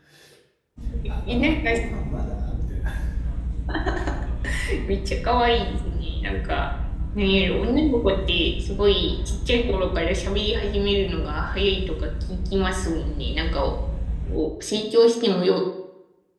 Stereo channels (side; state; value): both; identical; correlation 1.00